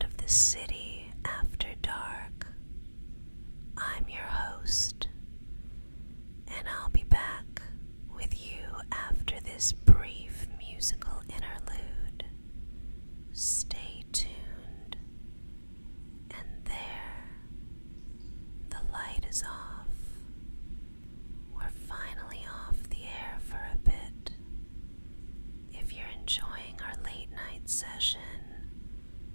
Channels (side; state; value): both; inverted; correlation -1.00